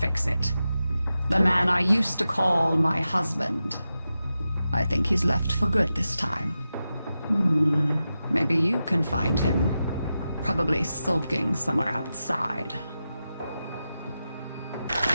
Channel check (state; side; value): inverted; both; correlation -0.91